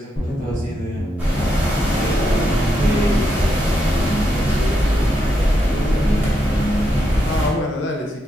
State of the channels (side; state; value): both; normal; correlation 0.82